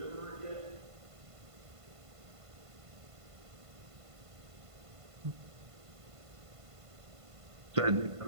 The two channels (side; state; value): left; late; 1.5 ms